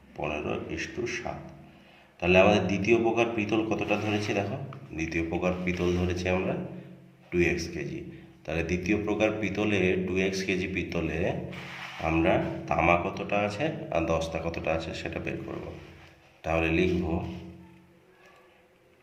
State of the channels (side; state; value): both; identical; correlation 1.00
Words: 15:7। তাহলে আমাদের দ্বিতীয় প্রকার পিতল কতটা ধরেছি দেখো, দ্বিতীয় প্রকার পিতল ধরেছি আমরা 2x কেজি। তাহলে দ্বিতীয় প্রকার পিতলে 2x কেজি পিতলে আমরা তামা কতটা আছে আর দস্তা কতটা আছে সেটা বের করব। তাহলে লিখব